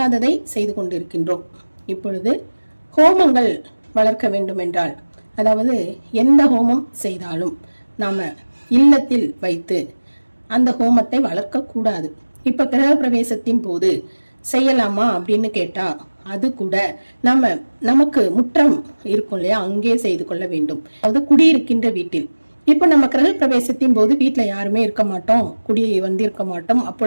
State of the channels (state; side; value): inverted; both; correlation -1.00